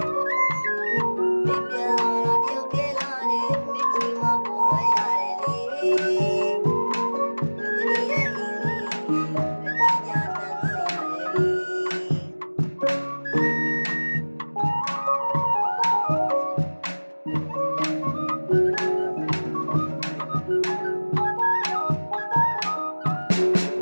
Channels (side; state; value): both; inverted; correlation -1.00